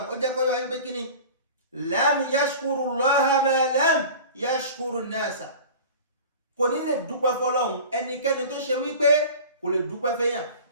ó jẹ́ kó yọ wáyé pé kí ni lam yashkuru Allaha ma lam yashkuru nasa. kò ní lè dúpẹ́ fọ́lọ́hun ẹnikẹ́ni tó ṣe wípé kò lè dúpẹ́ fẹ́yàn.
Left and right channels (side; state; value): both; inverted; correlation -0.38